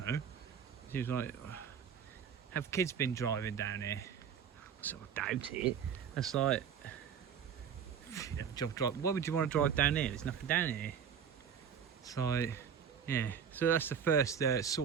know. She was like, have kids been driving down here? I sort of doubt it. That's like, why would you want to drive down here? There's nothing down here. It's like, yeah. So that's the first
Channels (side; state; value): left; quieter; 7.7 dB